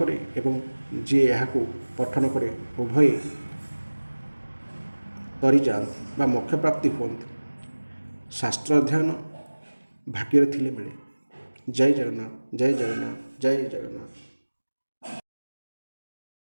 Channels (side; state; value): both; inverted; correlation -1.00